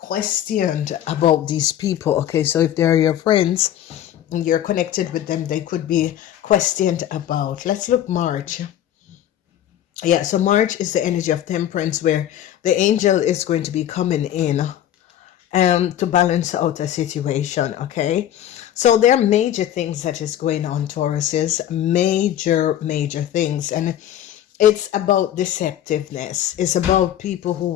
about these people. Okay, so if they're your friends and you're connected with them, they could be questioned about. Let's look March. Yeah, so March is the energy of temperance, where the angel is going to be coming in to balance out a situation, okay? So there are major things that is going on, Tauruses, major things. And it's about deceptiveness. It's about people who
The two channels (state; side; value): quieter; right; 11.3 dB